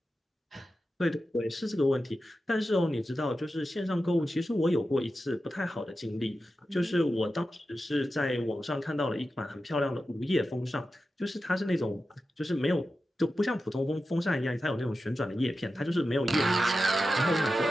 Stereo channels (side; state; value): both; normal; correlation 0.92